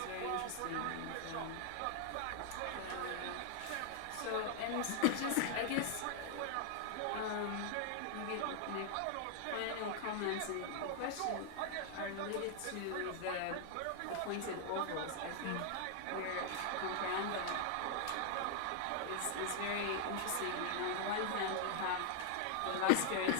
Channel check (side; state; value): both; different; correlation 0.00